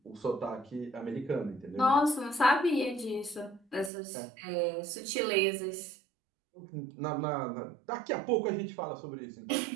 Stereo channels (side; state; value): left; drops out; at 3.9 s